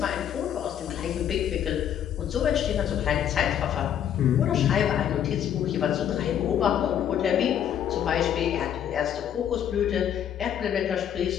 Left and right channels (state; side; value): quieter; right; 9.7 dB